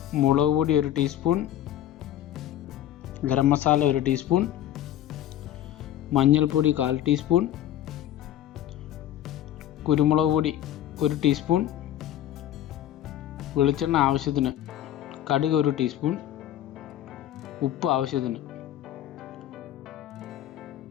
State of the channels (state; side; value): quieter; right; 12.0 dB